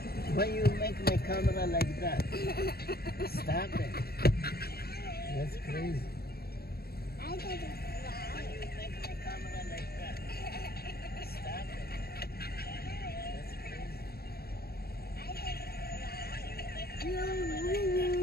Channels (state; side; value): late; right; 0.45 ms